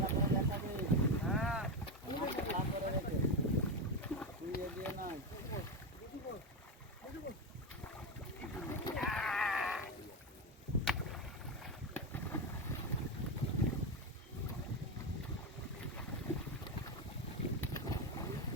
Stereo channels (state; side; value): normal; both; correlation 0.13